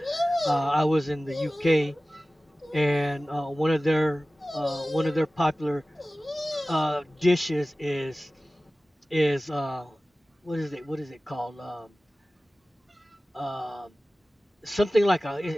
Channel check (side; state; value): both; normal; correlation 0.97